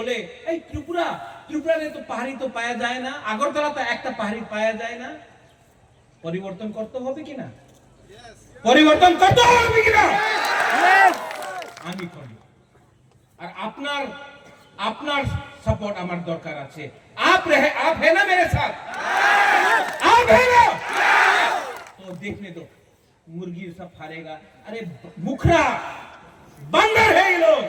এই ত্রিপুরা, ত্রিপুরাতে তো পাহাড়ি তো পাওয়া যায় না, আগরতলা তো একটা পাহাড়ি পাওয়া যায় না। পরিবর্তন করতে হবে কিনা? পরিবর্তন করতে হবে কিনা? আমি করব। আর আপনার আপনার सपोर्ट আমার দরকার আছে। आप है ना मेरे साथ? आप है ना? तो देखने दो, मुर्गी सब फाड़ेगा। अरे मुखरा बंदर है ये लोग,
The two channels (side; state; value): both; identical; correlation 1.00